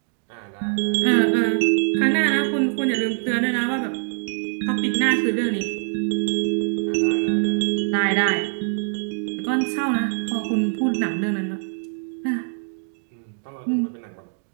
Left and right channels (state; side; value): silent; left; digital silence